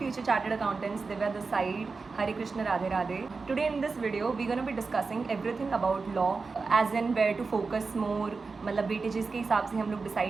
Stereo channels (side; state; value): left; quieter; 4.4 dB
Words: chartered accountants, Divya this side, Hare Krishna Radhe Radhe. Today in this video we gonna be discussing everything about law, as in where to focus more, मतलब वेटेजेस के हिसाब से हम लोग